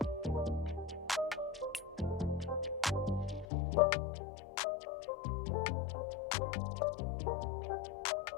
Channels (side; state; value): right; drops out; at 3.5 s